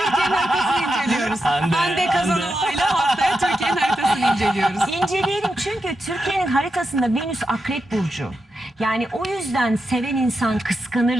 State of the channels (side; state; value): both; normal; correlation 0.87